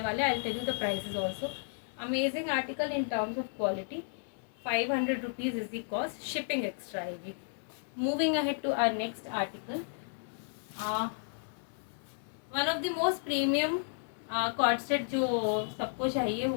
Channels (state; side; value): silent; right; digital silence